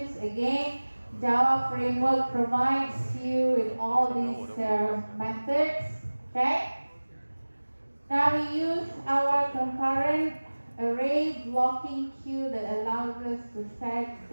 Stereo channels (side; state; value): both; inverted; correlation -1.00